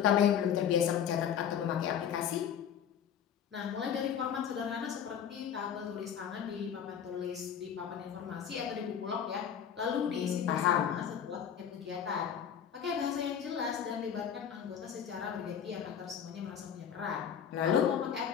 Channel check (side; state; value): right; quieter; 8.5 dB